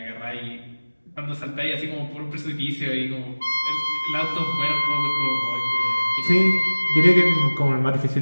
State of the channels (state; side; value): inverted; both; correlation -1.00